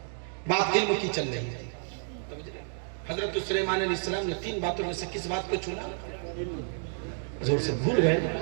بات علم کی چل رہی ہے۔ حضرت سلیمان علیہ السلام نے 3 باتوں میں سے کس بات کو چنا؟ زور سے بھول گئے،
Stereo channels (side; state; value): left; silent; 58 dB below the other